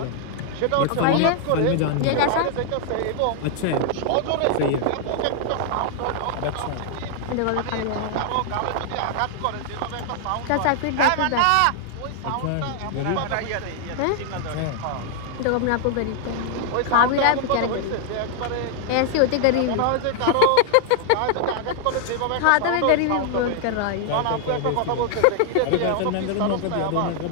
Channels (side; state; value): both; different; correlation 0.00